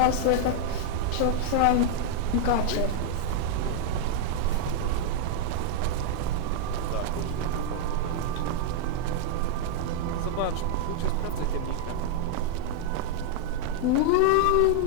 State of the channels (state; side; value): different; both; correlation 0.00